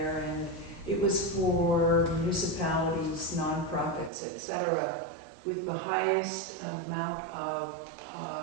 and it was for municipalities, nonprofits, etc., with the highest amount of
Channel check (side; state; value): left; drops out; at 4.1 s